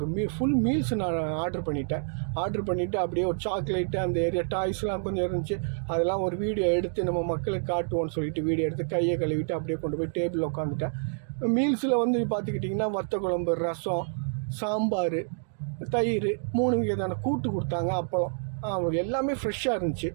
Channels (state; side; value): silent; left; digital silence